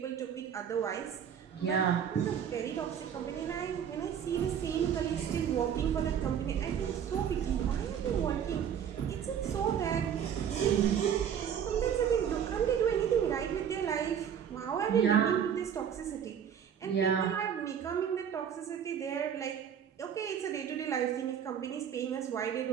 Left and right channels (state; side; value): quieter; left; 8.5 dB